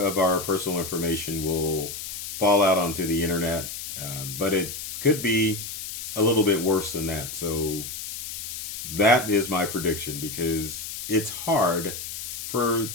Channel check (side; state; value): left; noise; hiss, 7 dB below the sound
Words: our personal information will fall out onto the internet. But it could be a little bit worse than that. So that is my prediction, because it's hard for